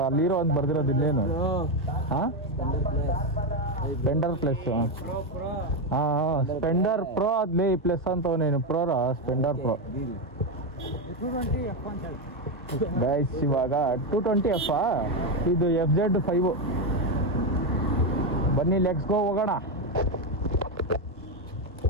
ಅಲ್ಲಿ ಹೀರೋ ಅಂತ ಬರ್ದಿರೋದು ಇಲ್ಲೇನು? ಹಾಂ ಸ್ಪೆಂಡರ್ ಪ್ಲಸ್. ಹಾಂ ಸ್ಪೆಂಡರ್ ಪ್ರೋ ಅದ್ಲೇ ಪ್ಲಸ್ ಅಂತವನೇನು ಪ್ರೋರ ಸ್ಪೆಂಡರ್ ಪ್ರೋ ಗೈಸ್. ಇವಾಗ 220F ಇದು FZ 5. ಬನ್ನಿ ಲೆಟ್ಸ್ ಗೋ ಹೋಗೋಣ.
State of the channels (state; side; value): normal; both; correlation 0.08